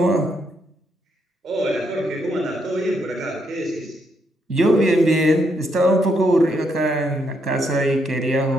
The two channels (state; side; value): normal; both; correlation 0.76